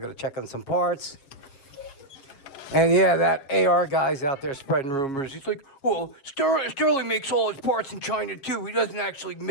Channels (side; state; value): right; late; 7.3 ms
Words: check on some parts. And yeah, that AR guy's out there spreading rumors. He's like, well, Sterling makes all his parts in China too. He doesn't actually